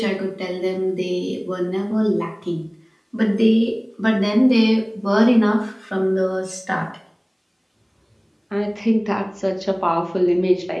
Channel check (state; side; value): identical; both; correlation 1.00